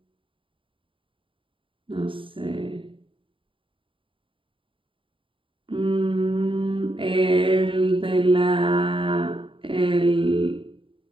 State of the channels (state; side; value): late; left; 0.25 ms